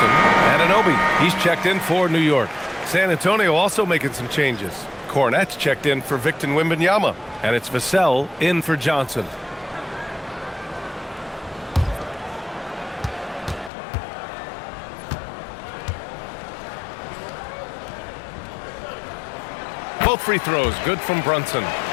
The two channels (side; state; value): right; drops out; at 13.7 s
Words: Anunoby, he's checked in for New York. San Antonio also making some changes. Cornette's checked in for Victor Wembanyama, and it's Vassell in for Johnson. Both free throws good from Brunson.